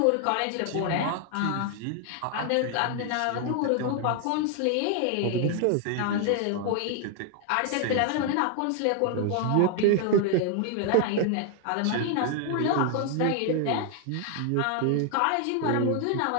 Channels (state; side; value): different; both; correlation 0.00